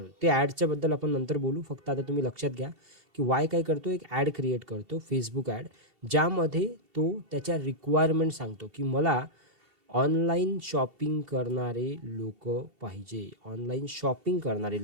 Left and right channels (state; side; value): late; left; 2.8 ms